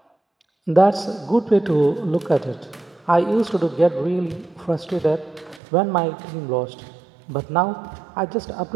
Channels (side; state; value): left; drops out; at 5.6 s